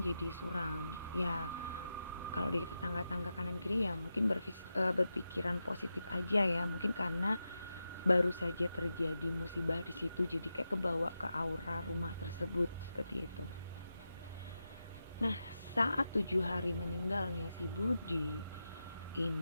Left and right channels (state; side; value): inverted; both; correlation -0.90